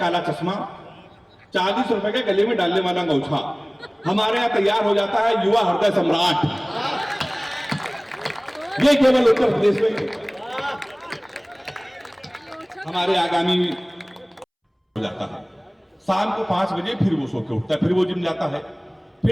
काला चश्मा, 40 रुपए के गले में डालने वाला अंगूठा हमारे यहाँ तैयार हो जाता है युवा हृदय सम्राट। ये केवल उत्तर प्रदेश में हमारे आगामी हो जाता है। शाम को 5 बजे फिर वो सो के उठता है, फिर वो जिम जाता है,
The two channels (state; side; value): identical; both; correlation 1.00